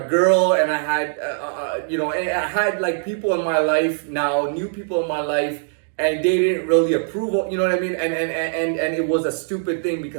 and I had, you know, and I had like people in my life now, new people in my life, and they didn't really approve of, you know what I mean? And it was a stupid thing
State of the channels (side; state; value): left; silent; digital silence